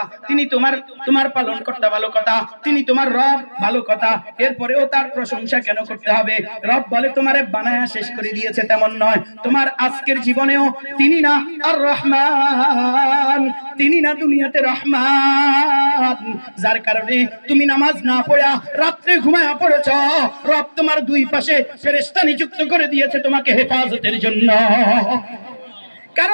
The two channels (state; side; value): inverted; both; correlation -1.00